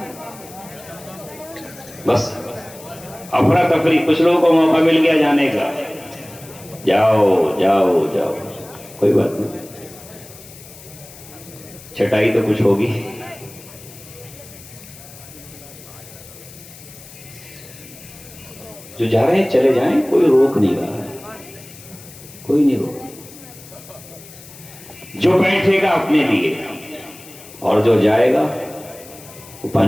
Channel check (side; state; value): left; noise; hiss, 19 dB below the sound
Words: بس افراتفری، کچھ لوگوں کو موقع مل گیا جانے کا، جاؤ جاؤ جاؤ، کوئی بات نہیں، چھٹائی تو کچھ ہوگی۔ جو جا رہے ہیں چلے جائیں، کوئی روک نہیں رہا ہے، کوئی نہیں روک۔ جو بیٹھے گا اپنے لیے اور جو جائے گا وہ